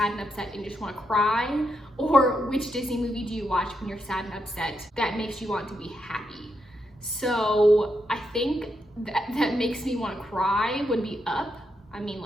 and upset and you just want to cry? Or which Disney movie do you watch when you're sad and upset that makes you want to be happy? So I think that makes me want to cry would be Up. I mean,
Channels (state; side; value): normal; both; correlation 0.82